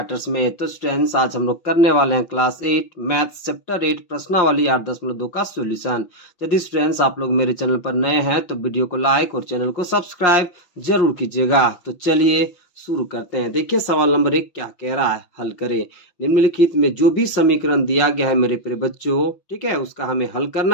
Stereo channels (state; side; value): late; right; 5.6 ms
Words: में। तो स्टूडेंट्स, आज हम लोग करने वाले हैं क्लास 8 मैथ्स चैप्टर 8 प्रश्नावली 8.2 का सॉल्यूशन। यदि स्टूडेंट्स आप लोग मेरे चैनल पर नए हैं तो वीडियो को लाइक और चैनल को सब्सक्राइब जरूर कीजिएगा। तो चलिए शुरू करते हैं। देखिए सवाल नंबर 1 क्या कह रहा है, हल करें। निम्नलिखित में जो भी समीकरण दिया गया है मेरे प्रिय बच्चों, ठीक है, उसका हमें हल